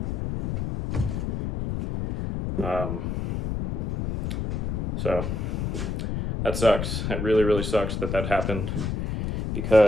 So that sucks. That really, really sucks that happened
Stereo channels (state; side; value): noise; left; rumble, 2 dB below the sound